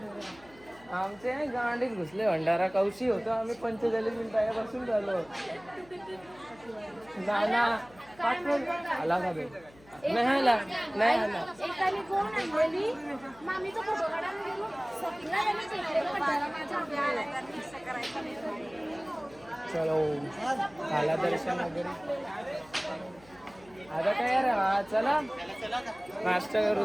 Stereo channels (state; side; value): noise; left; hum, 25 dB below the sound